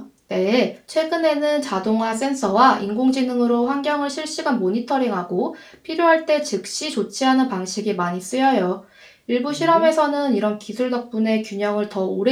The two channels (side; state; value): both; identical; correlation 1.00